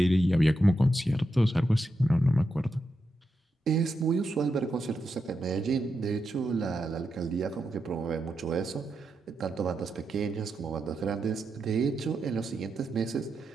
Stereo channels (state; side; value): normal; both; correlation 0.86